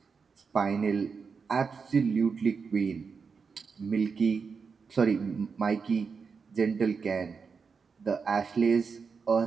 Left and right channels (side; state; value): left; quieter; 5.4 dB